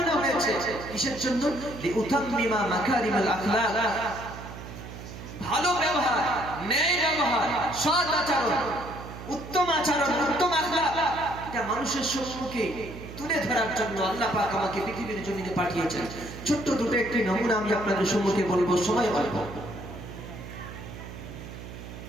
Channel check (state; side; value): noise; right; hum, 12 dB below the sound